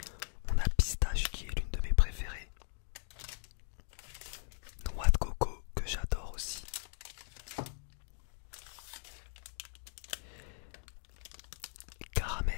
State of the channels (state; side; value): silent; right; digital silence